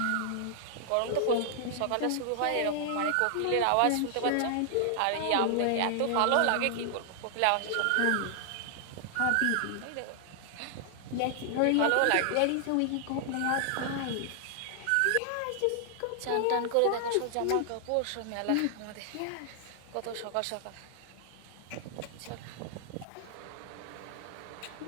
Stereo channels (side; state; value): both; different; correlation -0.01